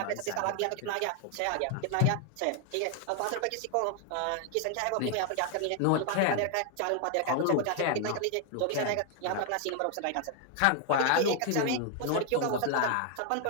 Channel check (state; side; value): different; both; correlation 0.00